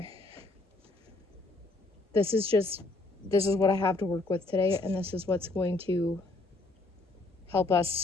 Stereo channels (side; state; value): right; quieter; 3.1 dB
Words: This is what I have to work with today, and this is what's going to help